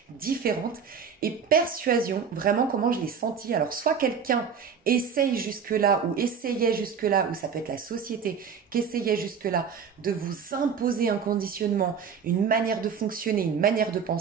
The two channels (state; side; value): quieter; left; 6.6 dB